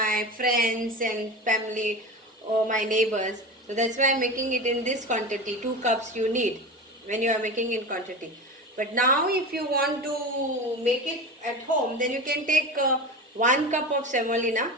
friends and family or my neighbors. So that's why I am making it in this quantity. 2 cups you need when you are making in quantity. But now if you want to make it at home, then you can take 1 cup of semolina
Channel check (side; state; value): both; normal; correlation 0.27